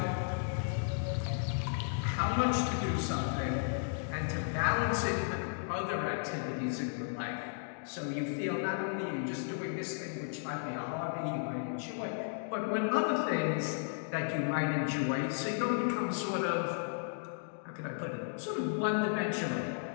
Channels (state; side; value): silent; right; digital silence